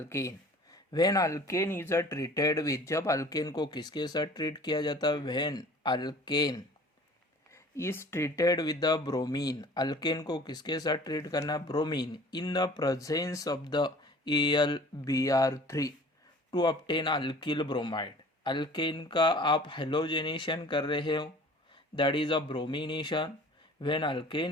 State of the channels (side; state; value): both; normal; correlation 0.47